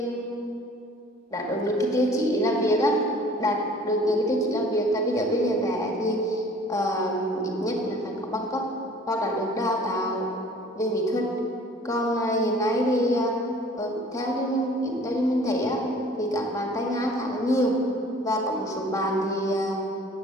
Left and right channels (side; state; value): both; normal; correlation 0.50